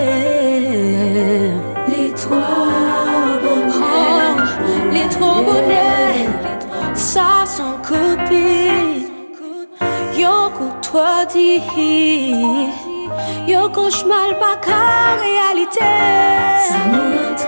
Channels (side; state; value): both; inverted; correlation -1.00